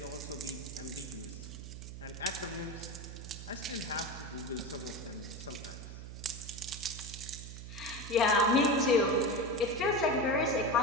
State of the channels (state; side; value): noise; right; hum, 10 dB below the sound